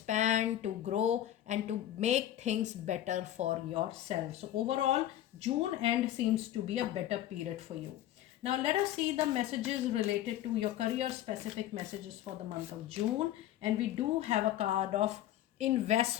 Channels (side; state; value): right; quieter; 12.6 dB